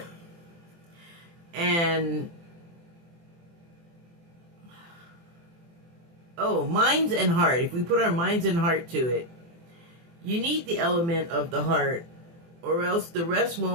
And minds and heart. If we put our minds and heart to it, you need the element of the heart, or else the rest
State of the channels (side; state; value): left; late; 24 ms